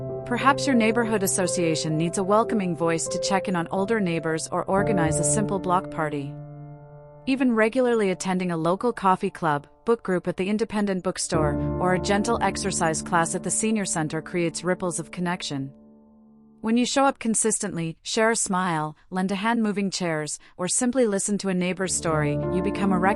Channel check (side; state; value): both; identical; correlation 1.00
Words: Perhaps your neighborhood association needs a welcoming voice to check in on older neighbors or organize a simple block party. Even regularly attending a local coffee club, book group at the independent bookstore, or a gentle exercise class at the senior center creates ripples of connection. When you show up consistently, share a smile, lend a hand moving chairs, or simply listen to a neighbor's story, you become a